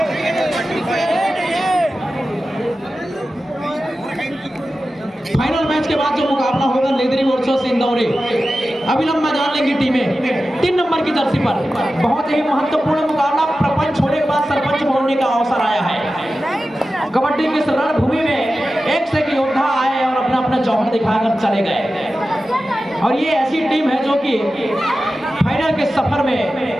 फाइनल मैच के बाद जो मुकाबला होगा लेदरी वर्सेस इंदौरी, अविलंब मैदान लेंगी टीमें 3 नंबर की जर्सी पर। बहुत ही महत्वपूर्ण मुकाबला, प्रपंच होने के बाद सरपंच बनने का अवसर आया है। कबड्डी की रणभूमि में एक से एक योद्धा आए और अपना अपना जौहर दिखाकर चले गए। और ये ऐसी टीम है जो कि फाइनल के सफर में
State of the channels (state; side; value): normal; both; correlation 0.94